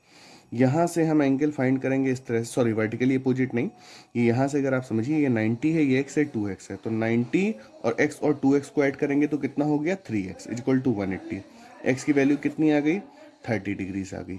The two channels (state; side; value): identical; both; correlation 1.00